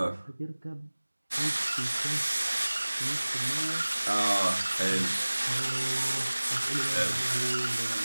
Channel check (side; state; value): both; inverted; correlation -1.00